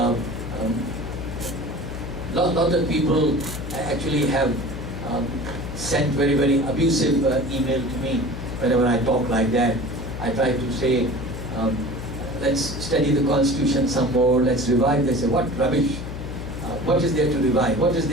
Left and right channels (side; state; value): left; noise; hum, 8 dB below the sound